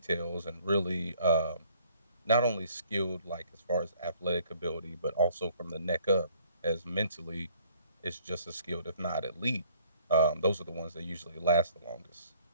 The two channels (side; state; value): both; inverted; correlation -0.60